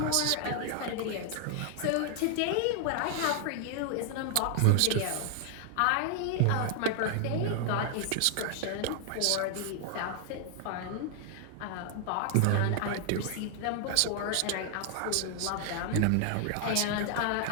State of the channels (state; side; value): different; both; correlation 0.00